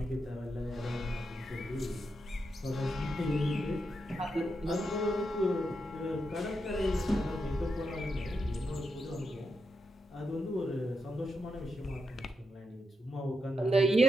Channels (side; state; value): both; normal; correlation 0.85